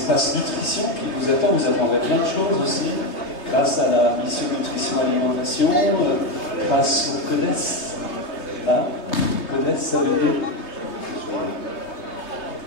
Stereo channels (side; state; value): right; late; 3.2 ms